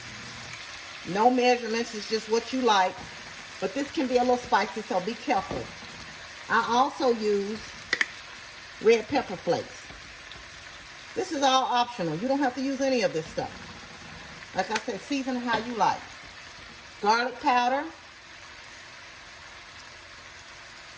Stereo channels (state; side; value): identical; both; correlation 1.00